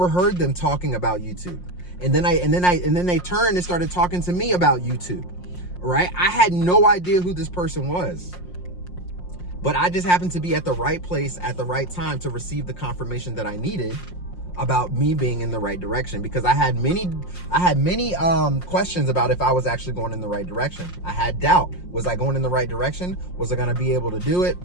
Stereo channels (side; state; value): right; late; 5.6 ms